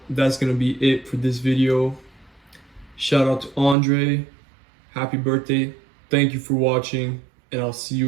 that's gonna be it for this video. Shout out to Andre. Happy birthday. Thank you for watching, and I'll see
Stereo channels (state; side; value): drops out; left; at 3.8 s